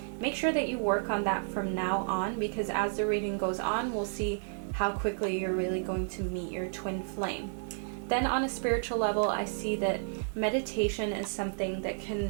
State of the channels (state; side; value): silent; left; digital silence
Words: make sure that you work on that from now on, because as the reading goes on, we'll see how quickly you're really going to meet your twin flame. Then on a spiritual level, I see that meditation is something that